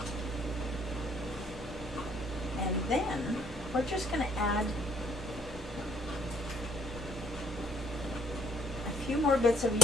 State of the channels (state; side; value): normal; both; correlation 0.66